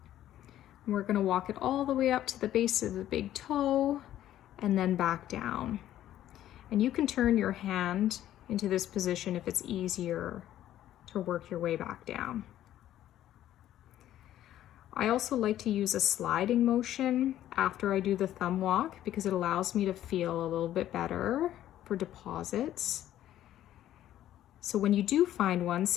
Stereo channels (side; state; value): right; quieter; 12.5 dB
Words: we're going to walk it all the way up to the base of the big toe and then back down. And you can turn your hand into this position if it's easier to work your way back down. I also like to use a sliding motion after I do the thumb walk because it allows me to feel a little bit better for deposits. So when you do find one,